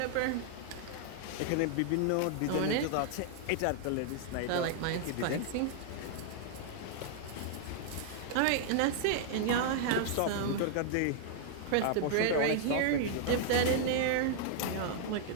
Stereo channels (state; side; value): different; both; correlation -0.01